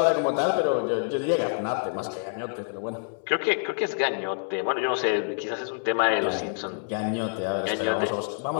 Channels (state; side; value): silent; right; 60 dB below the other